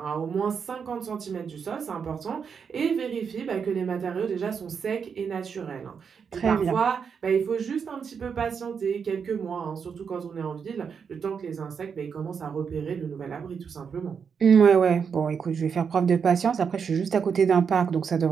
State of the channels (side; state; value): left; quieter; 6.5 dB